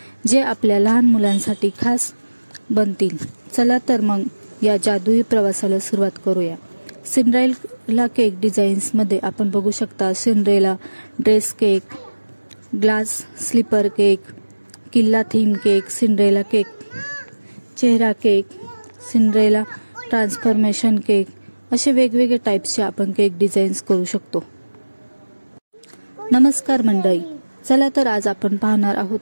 जे आपल्या लहान मुलांसाठी खास बनतील। चला तर मग या जादुई प्रवासाला सुरुवात करूया। सिंड्रेला केक डिझाईन्स मध्ये आपण बघू शकता Cinderella dress cake, glass slipper cake, किल्ला थीम केक, सिंड्रेला केक, चेहरा केक, सिंड्रेला ट्रान्सफॉर्मेशन केक असे वेगवेगळे टाइप्सचे आपण केक डिझाईन्स करू शकतो। नमस्कार मंडळी, चला तर आज आपण पाहणार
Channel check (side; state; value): both; inverted; correlation -1.00